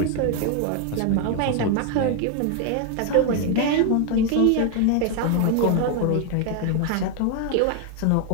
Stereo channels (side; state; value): both; different; correlation 0.01